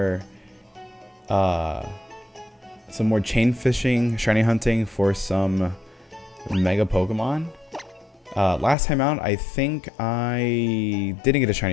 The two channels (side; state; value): right; drops out; at 8.8 s